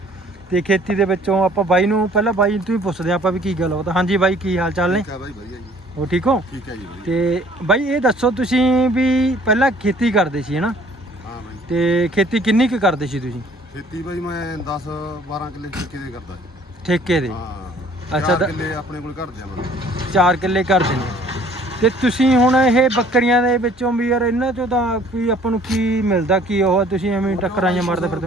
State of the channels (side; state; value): both; normal; correlation 0.56